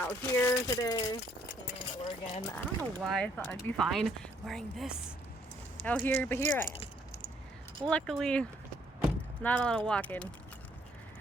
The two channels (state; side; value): normal; both; correlation 0.67